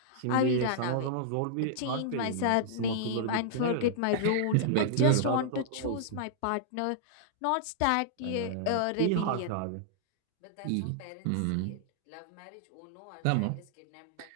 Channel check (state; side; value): different; both; correlation -0.02